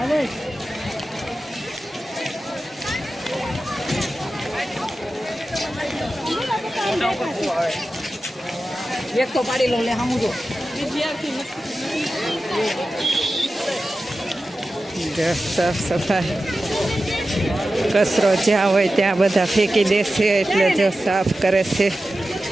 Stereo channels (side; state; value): both; normal; correlation 0.93